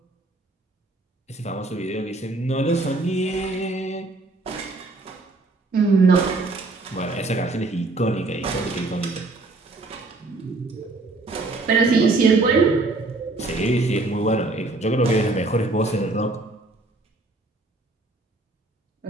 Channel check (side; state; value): left; quieter; 3.1 dB